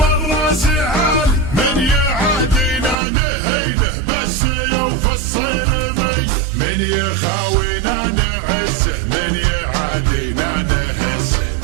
عالي، من يعادينا نهينه بس يوفى الصيرمي، من يخاوينا نعزه من يعادينا نهزه،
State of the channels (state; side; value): drops out; left; at 3.0 s